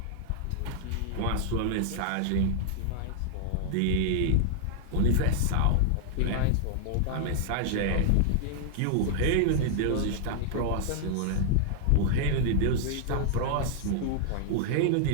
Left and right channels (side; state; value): both; different; correlation -0.01